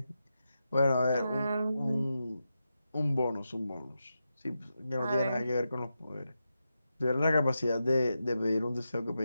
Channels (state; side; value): inverted; both; correlation -0.88